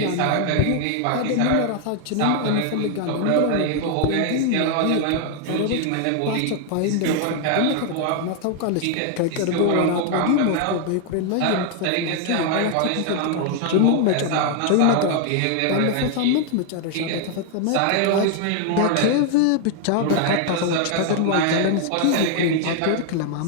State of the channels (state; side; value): different; both; correlation 0.00